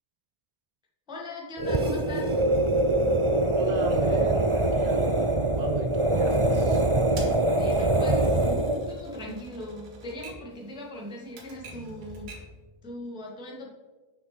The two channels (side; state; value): left; late; 1.4 ms